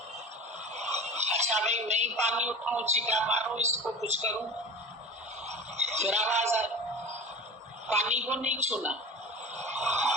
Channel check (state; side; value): normal; both; correlation 0.34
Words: अच्छा भाई मैं ही पानी उठाऊं, छींटा मारूं, इसको कुछ करूं। फिर आवाज आई, पानी को नहीं छूना,